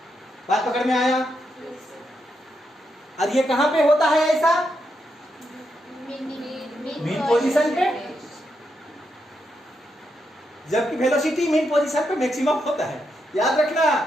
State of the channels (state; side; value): normal; both; correlation 0.82